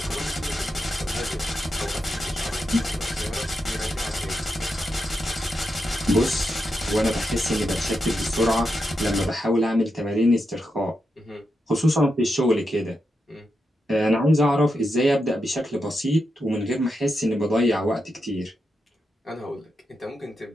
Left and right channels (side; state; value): both; normal; correlation 0.86